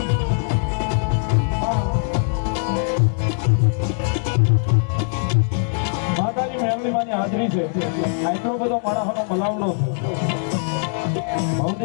માતાજી મેળવીમાંની હાજરી છે આટલો બધો માણસનો મલાવડો છે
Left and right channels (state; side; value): silent; right; 61 dB below the other